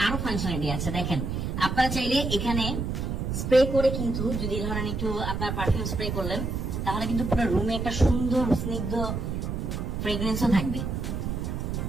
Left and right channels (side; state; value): right; noise; rumble, 2 dB below the sound